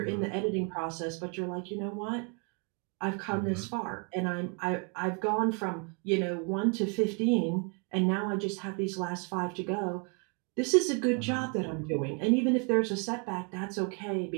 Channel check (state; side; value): quieter; left; 35.8 dB